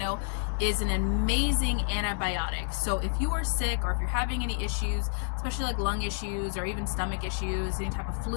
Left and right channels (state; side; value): silent; right; digital silence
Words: is an amazing antibiotic. So if you are sick, or if you're having any issues, especially like lung issues or even stomach issues, any type of